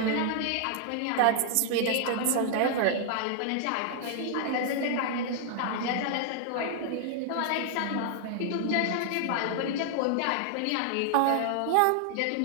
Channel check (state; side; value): different; both; correlation 0.00